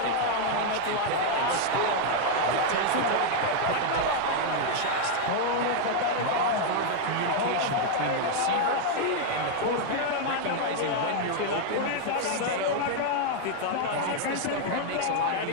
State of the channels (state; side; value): different; both; correlation 0.00